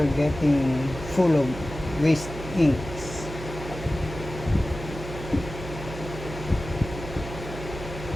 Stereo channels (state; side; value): noise; right; hum, 10 dB below the sound